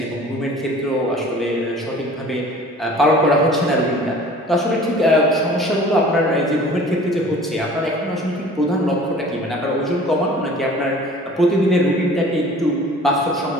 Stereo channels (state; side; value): normal; both; correlation 0.47